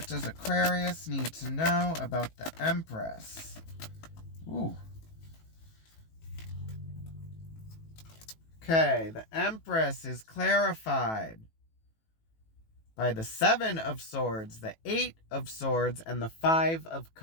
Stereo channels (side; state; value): right; late; 18 ms